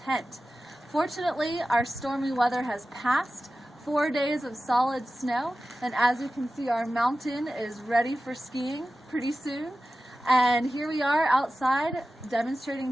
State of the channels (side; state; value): both; normal; correlation 0.94